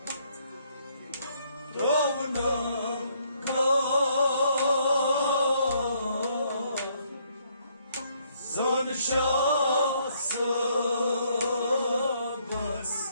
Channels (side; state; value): both; inverted; correlation -0.69